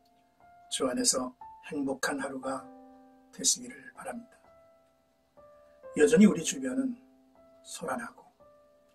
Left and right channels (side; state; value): both; identical; correlation 1.00